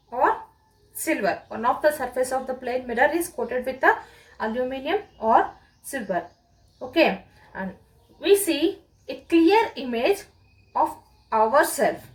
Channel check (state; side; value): identical; both; correlation 1.00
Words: or silver. One of the surface of the plane mirror is coated with the aluminum or silver. Okay, and we see a clear image of ourselves